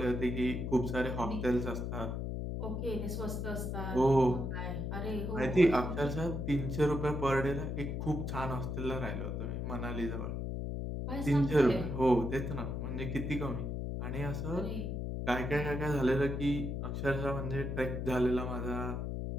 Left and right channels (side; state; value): left; noise; hum, 3 dB below the sound